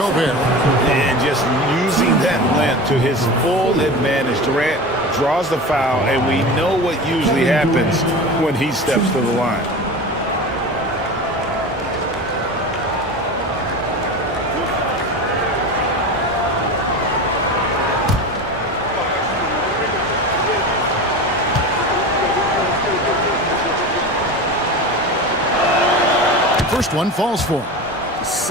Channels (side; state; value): both; normal; correlation 0.29